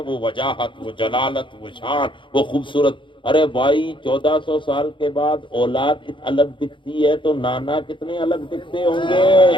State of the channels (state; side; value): late; right; 0.24 ms